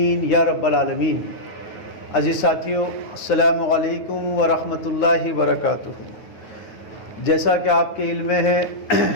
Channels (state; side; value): late; right; 9.3 ms